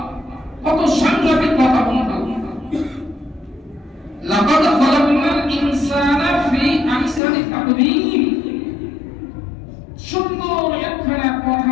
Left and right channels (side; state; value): right; drops out; at 7.2 s